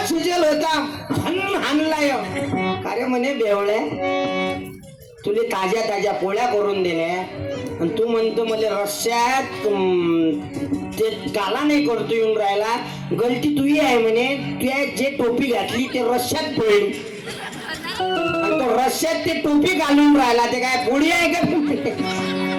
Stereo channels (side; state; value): both; identical; correlation 1.00